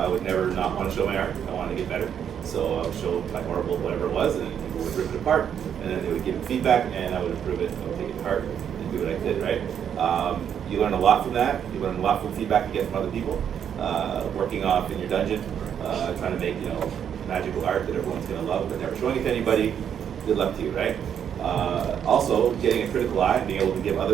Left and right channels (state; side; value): quieter; left; 8.6 dB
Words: would never not want to show my art. I wanted to get better. So I would show my horrible whatever it was, and people would rip it apart, and then they would give me feedback, and I would improve it. I would take it apart and do what I did, right? You learn a lot from that. You learn a lot from feedback you get from other people. Working off in your dungeon, trying to make, you know, magical art that everyone's gonna love, but never showing it to anybody. Good luck to you, right? Also, getting a critical eye and being able to give